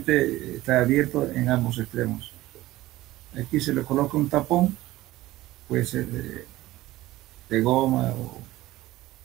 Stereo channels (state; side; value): quieter; left; 16.9 dB